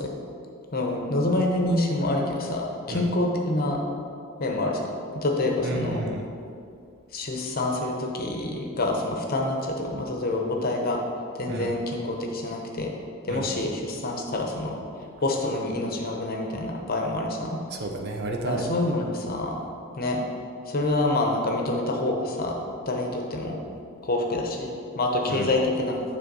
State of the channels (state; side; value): normal; both; correlation 0.24